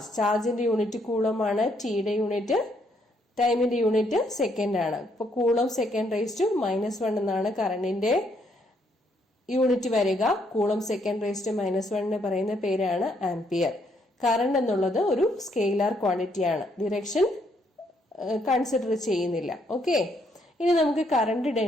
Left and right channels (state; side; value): normal; both; correlation 0.72